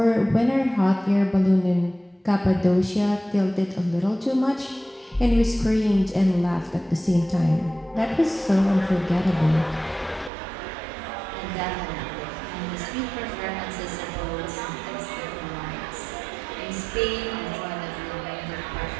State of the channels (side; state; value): left; drops out; at 10.3 s